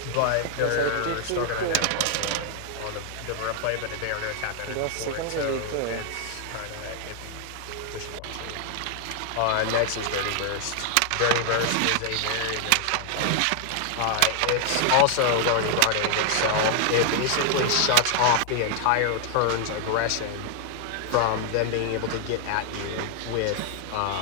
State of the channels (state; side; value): different; both; correlation 0.00